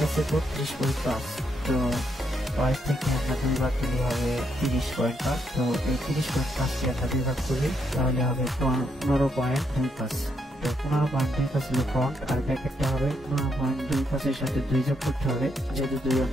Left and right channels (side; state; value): both; normal; correlation 0.77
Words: আছে 32.5, তো ওয়েস্ট থেকে আমরা 2 ভাগ দিলে হবে 30.5। তো এই 30.5 কে আমরা 2 ভাগ করি তাহলে হবে 15.25। তো 15.25 হলো ফ্রন্ট, আর ব্যাকেটটা হবে 15.25 এর সাথে 2 যোগ করতে হবে, যেহেতু 2